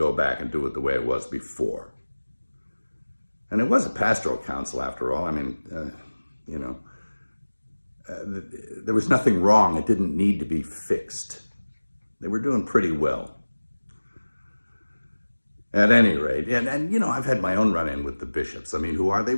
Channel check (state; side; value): inverted; both; correlation -1.00